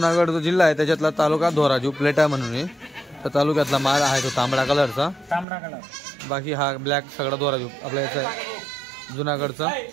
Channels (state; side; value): drops out; left; at 5.5 s